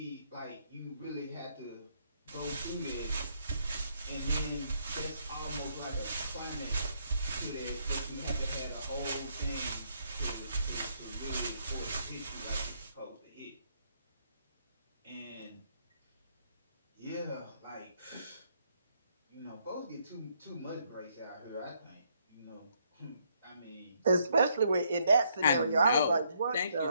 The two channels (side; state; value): both; inverted; correlation -0.72